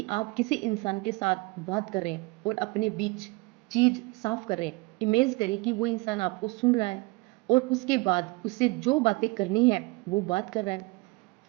आप किसी इंसान के साथ बात कर रहे हैं और अपने बीच चीज साफ कर रहे हैं। इमेज करें कि वो इंसान आपको सुन रहा है और उसके बाद उससे जो बातें करनी है वो बात कर रहा है।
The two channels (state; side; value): quieter; left; 24.5 dB